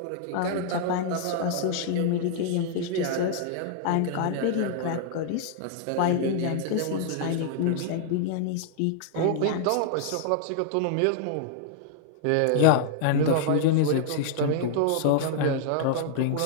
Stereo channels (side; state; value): both; different; correlation -0.01